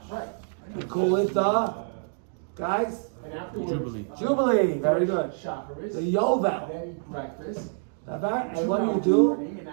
Right. we call it the, guys, And afterwards. Jubilee. Very good. Shacharis. The Yovel. Then eat breakfast. And what do?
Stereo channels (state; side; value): silent; left; digital silence